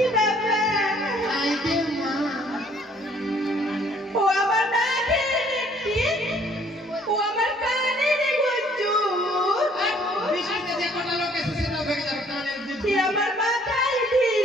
বাবা। আই গে মা, ও আমার নাকের নেত্রী, ও আমার কানের গুঞ্জু, বিশালে যে কটা লোক এসেছে সেটাও ভেঙে যাবে কানের দুধ। কি আমার মাথায়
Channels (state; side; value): normal; both; correlation 0.60